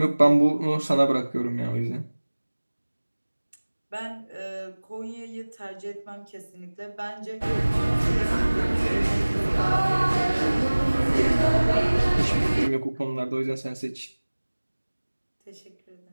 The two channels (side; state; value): both; inverted; correlation -1.00